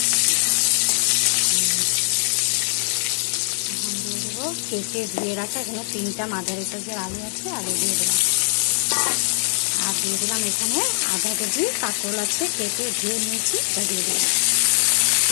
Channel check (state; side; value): silent; right; digital silence